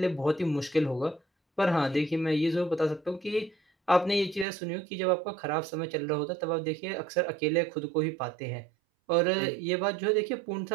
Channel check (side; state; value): left; drops out; at 4.5 s